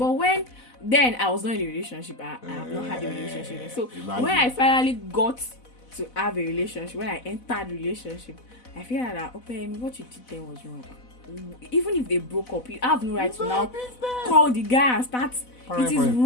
then I was not in a relationship. I have not had a relationship yet. So Imagine. when I finally got to have a relationship, when I entered relationship, I feel like that, okay, what you did then was wrong. Even if they broke up, you have no right to now call the guy and start It is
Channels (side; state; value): right; late; 4.0 ms